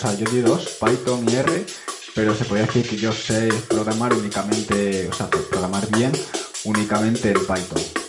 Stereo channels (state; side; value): identical; both; correlation 1.00